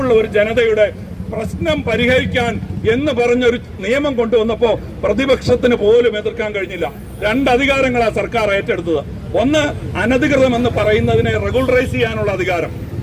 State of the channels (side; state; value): both; identical; correlation 1.00